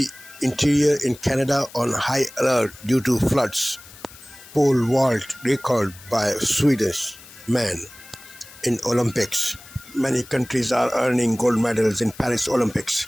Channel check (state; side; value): noise; left; hiss, 20 dB below the sound